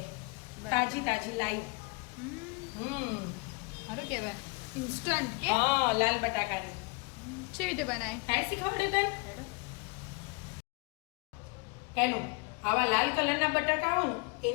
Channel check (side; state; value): right; quieter; 28.7 dB